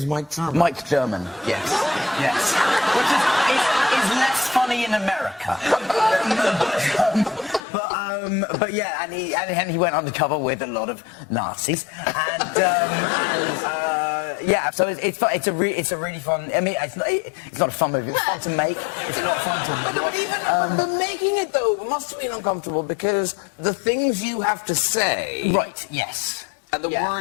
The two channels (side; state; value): right; drops out; at 7.6 s